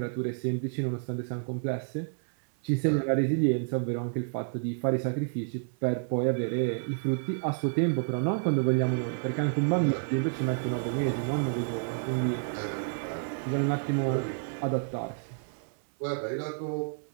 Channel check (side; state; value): left; silent; 58 dB below the other